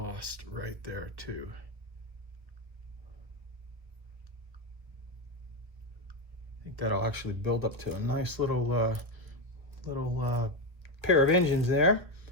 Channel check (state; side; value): late; left; 1.7 ms